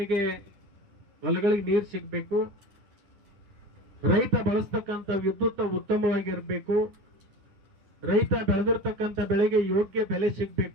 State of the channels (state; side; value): late; left; 10 ms